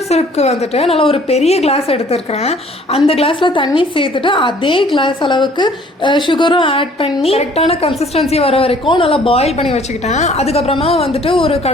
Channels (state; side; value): normal; both; correlation 0.56